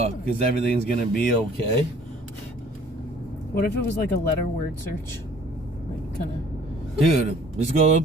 Because everything's gonna be okay. What if it was like a letter word search? Like, kind of. Dude, just go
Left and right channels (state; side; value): normal; both; correlation 0.55